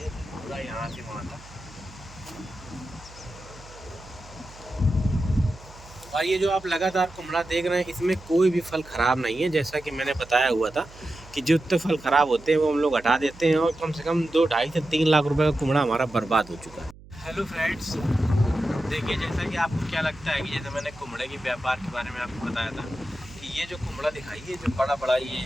पूरा यहाँ से वहाँ तक। और ये जो आप लगातार कुमड़ा देख रहे हैं, इसमें कोई भी फल ख़राब नहीं है। जैसा कि मैंने बताया हुआ था कि जितने फल ख़राब होते हैं वो हम लोग हटा देते हैं, और कम से कम 2-2.5 से 3 लाख रुपए का कुमड़ा हमारा बर्बाद हो चुका है। हेलो फ्रेंड्स, देखिए जैसा कि आपको क्या लगता है कि जैसे मैंने कुमड़े के व्यापार के बारे में आपको बताया था कि ये जो कुमड़ा दिखाई, ये जो बड़ा बड़ा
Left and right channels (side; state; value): right; noise; hum, 20 dB below the sound